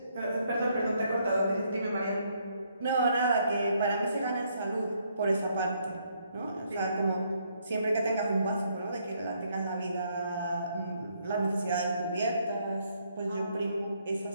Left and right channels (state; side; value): inverted; both; correlation -0.71